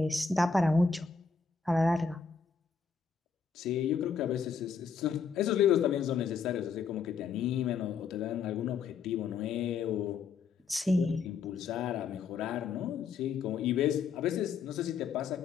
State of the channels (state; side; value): quieter; right; 5.6 dB